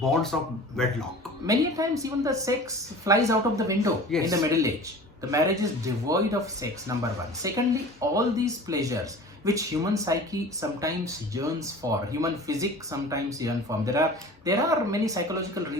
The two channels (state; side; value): normal; both; correlation 0.40